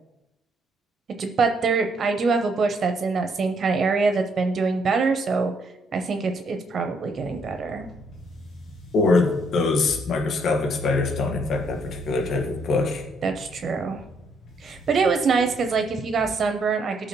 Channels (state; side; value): normal; both; correlation 0.71